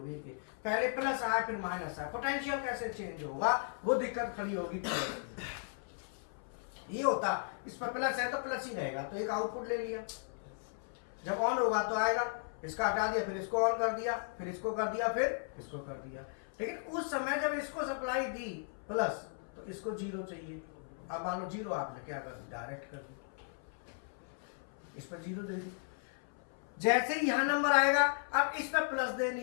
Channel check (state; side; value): silent; right; 54 dB below the other